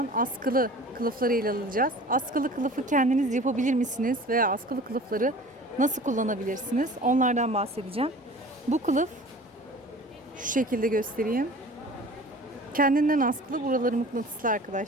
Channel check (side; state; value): both; normal; correlation 0.43